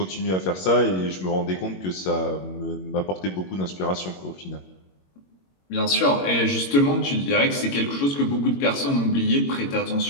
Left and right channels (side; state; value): right; late; 22 ms